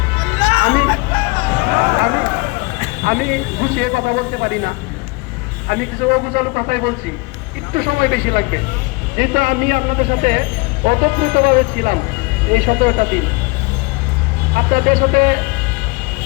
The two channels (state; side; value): quieter; right; 26.7 dB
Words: আমি আমি আমি গুছিয়ে কথা বলতে পারি না, আমি কিছু অগুছালো কথাই বলছি, একটু সময় বেশি লাগবে, যেটা আমি আপনাদের সাথে অতপ্রতভাবে ছিলাম এই 17টা দিন। আপনাদের সাথে